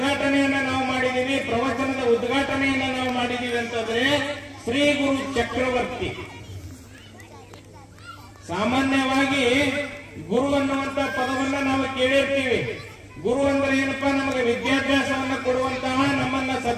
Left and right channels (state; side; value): identical; both; correlation 1.00